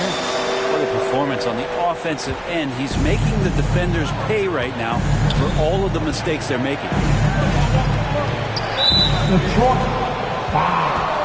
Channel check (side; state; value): both; identical; correlation 1.00